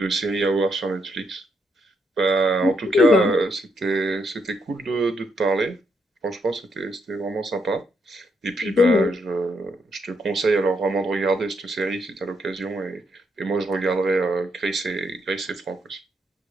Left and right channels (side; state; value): both; normal; correlation 0.77